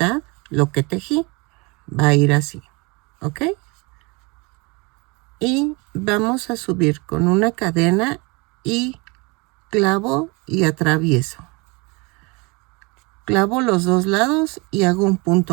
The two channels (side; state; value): left; quieter; 27.7 dB